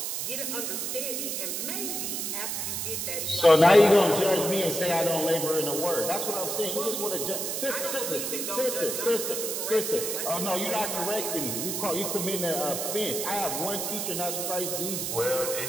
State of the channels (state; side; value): noise; right; hiss, 2 dB below the sound